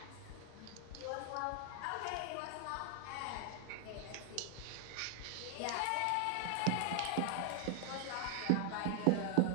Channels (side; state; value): both; different; correlation 0.00